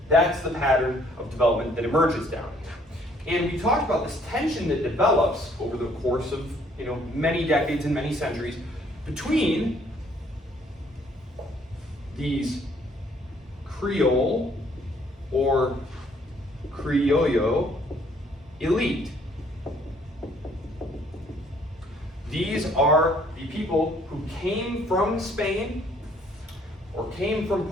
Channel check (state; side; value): normal; both; correlation 0.63